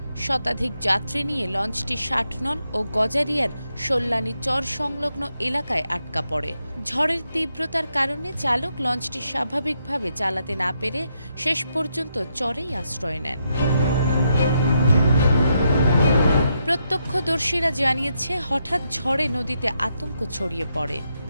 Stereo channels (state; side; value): inverted; both; correlation -0.80